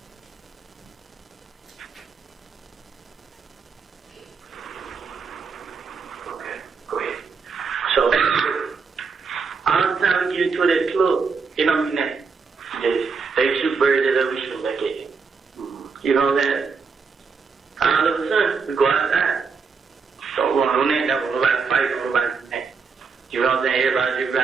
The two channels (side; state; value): left; quieter; 5.2 dB